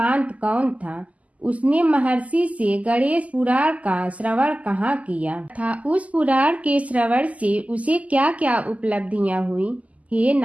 कौन था। उसने महर्षि से गणेश पुराण का श्रवण कहाँ किया था, उस पुराण के श्रवण से उसे क्या क्या उपलब्धियां हुई। हे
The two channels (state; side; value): late; left; 0.071 ms